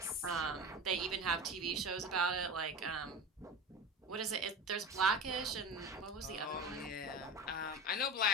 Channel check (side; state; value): both; normal; correlation 0.30